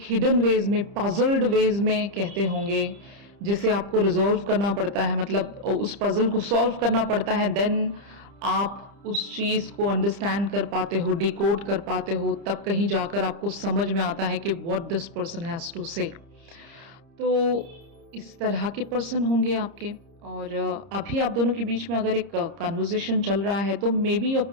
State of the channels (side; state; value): left; late; 30 ms